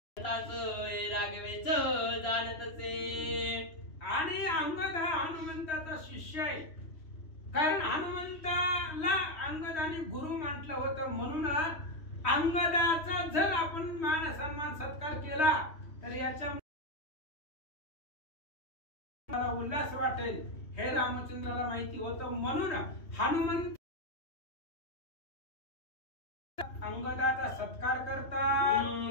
राघवेच जाणतसे. आणि अंगद हा हनुमंताचा शिष्य आहे, कारण हनुमंताला अंगदाने गुरु म्हटलं होतं. म्हणून अंगदाचा जर आपण मान सन्मान सत्कार केला तर याच्या उल्हास वाटेल हे रामचंद्राला माहिती होतं. म्हणून हनुमंत अंगदाचा सत्कार करतात.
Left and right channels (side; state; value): right; late; 3.1 ms